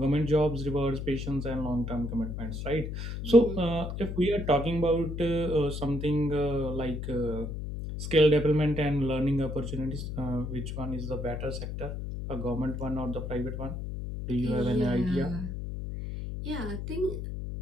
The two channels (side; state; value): left; noise; hum, 5 dB below the sound